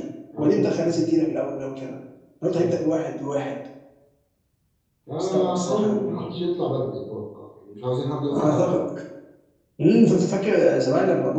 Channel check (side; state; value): both; identical; correlation 1.00